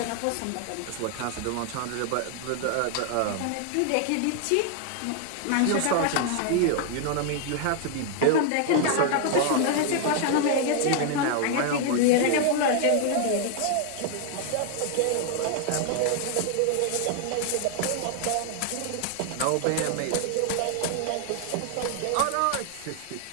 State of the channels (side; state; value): both; different; correlation 0.00